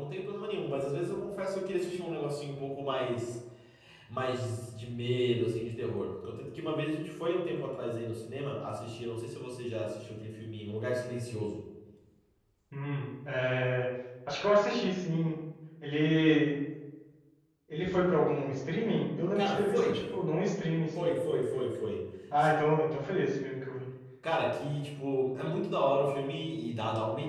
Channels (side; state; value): both; identical; correlation 1.00